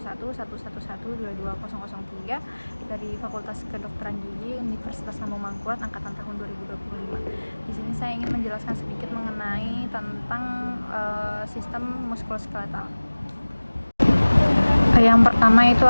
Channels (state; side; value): inverted; both; correlation -1.00